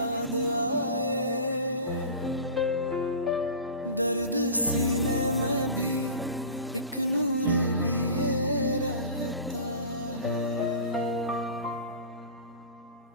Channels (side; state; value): both; inverted; correlation -0.33